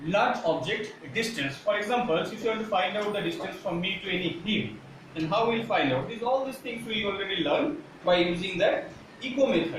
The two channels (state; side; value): identical; both; correlation 1.00